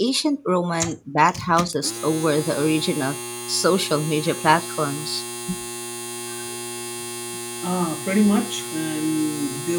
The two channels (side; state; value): both; identical; correlation 1.00